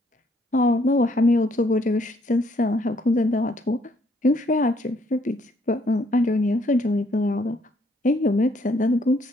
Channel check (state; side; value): normal; both; correlation 0.67